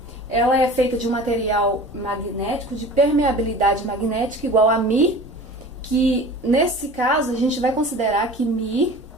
ela é feita de um material magnético de permeabilidade magnética igual a μ, que nesse caso a gente vai considerar que μ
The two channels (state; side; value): normal; both; correlation 0.40